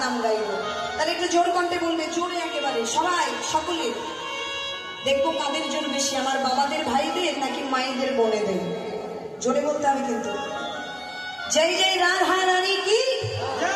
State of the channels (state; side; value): identical; both; correlation 1.00